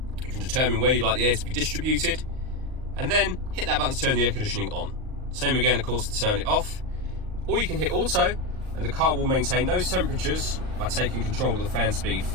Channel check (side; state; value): left; late; 38 ms